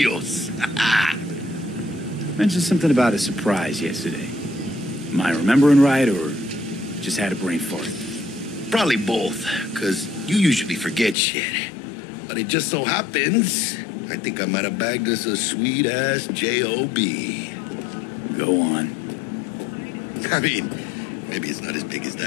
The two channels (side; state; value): right; drops out; at 11.2 s